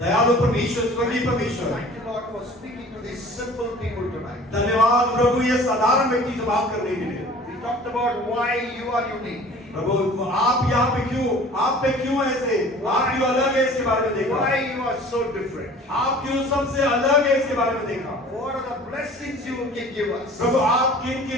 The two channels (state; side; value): normal; both; correlation 0.46